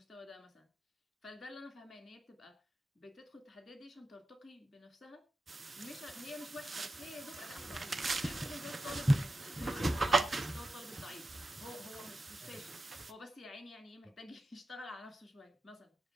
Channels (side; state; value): both; normal; correlation 0.89